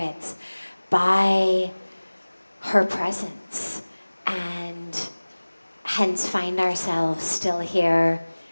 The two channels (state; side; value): inverted; both; correlation -1.00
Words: by her presence, and hence find ourselves still here